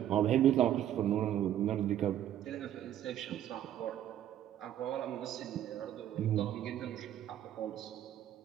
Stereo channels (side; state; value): left; quieter; 11.5 dB